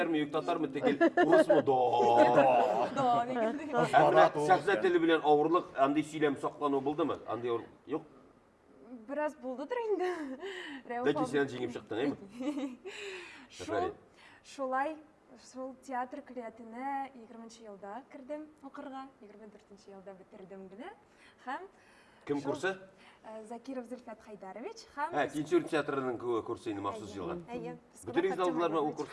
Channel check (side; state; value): both; identical; correlation 1.00